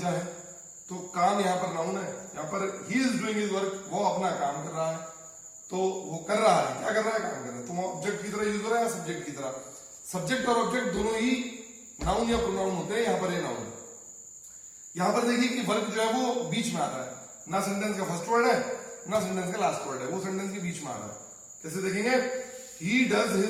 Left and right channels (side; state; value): both; identical; correlation 1.00